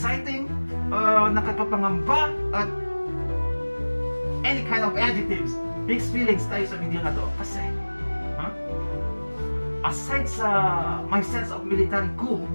nakakapangamba, at any kind of adjectives, mixed feelings tayo sa video na to. Kasi, aside sa my sense of military coup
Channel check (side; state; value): both; inverted; correlation -1.00